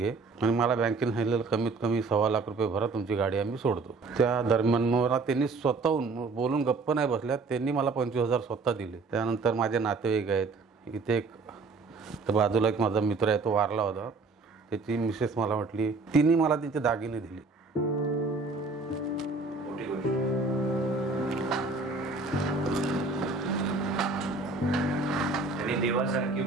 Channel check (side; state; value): left; quieter; 4.0 dB